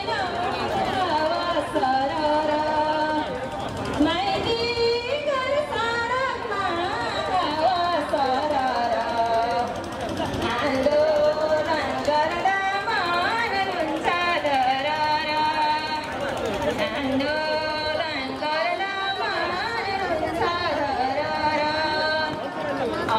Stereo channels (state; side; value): identical; both; correlation 1.00